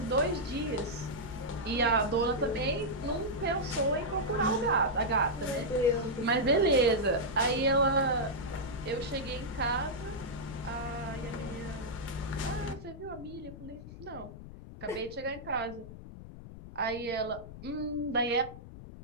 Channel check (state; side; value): noise; left; rumble, 14 dB below the sound